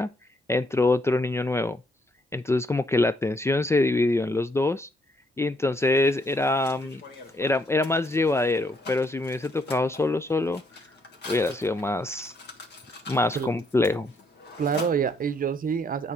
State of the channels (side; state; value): both; normal; correlation 0.71